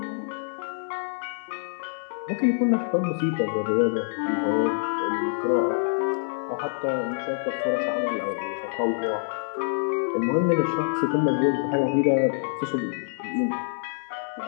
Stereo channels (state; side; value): silent; right; 61 dB below the other